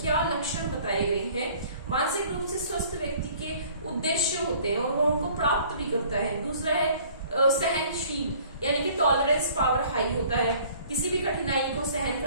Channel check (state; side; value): inverted; both; correlation -0.53